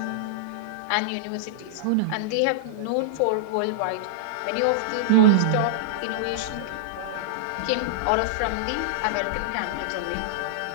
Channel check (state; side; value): different; both; correlation -0.02